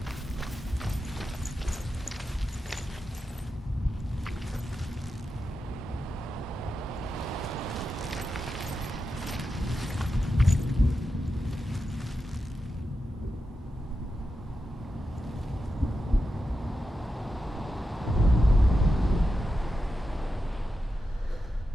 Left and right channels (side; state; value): both; normal; correlation 0.89